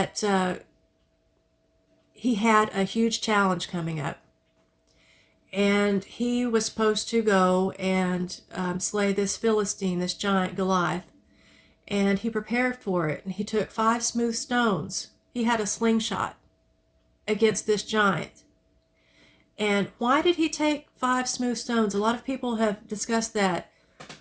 he had a huge challenge coming up. And he was supposed to go and slay this Philistine, this giant Goliath. And he prepared for it. And he took 5 smooth stones. He had a slingshot against this giant. And why did he take 5 smooth stones? A lot of people have discussed that.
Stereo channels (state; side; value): identical; both; correlation 1.00